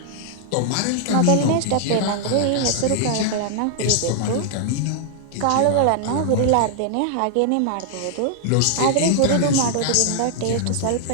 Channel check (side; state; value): both; different; correlation 0.00